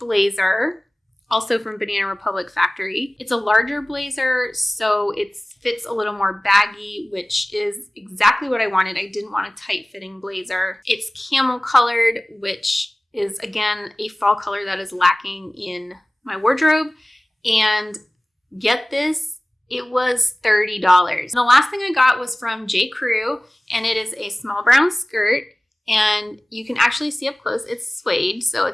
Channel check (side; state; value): both; normal; correlation 0.98